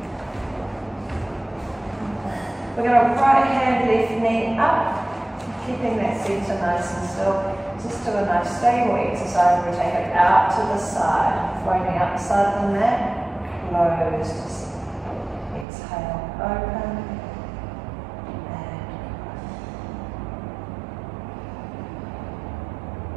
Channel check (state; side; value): drops out; left; at 15.7 s